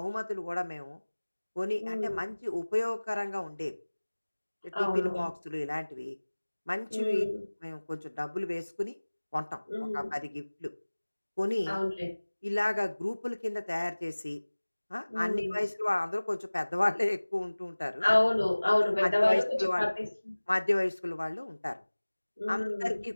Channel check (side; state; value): both; inverted; correlation -1.00